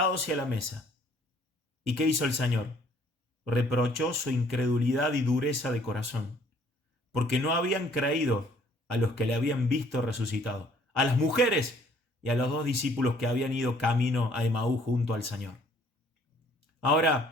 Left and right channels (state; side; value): normal; both; correlation 0.60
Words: y a la mesa. ¿Y qué hizo el Señor? Reprochó su incredulidad y dureza de corazón, porque no habían creído a los que le habían visto resucitado, a las mujeres y a los 2 discípulos que habían ido camino a Emaús junto al Señor.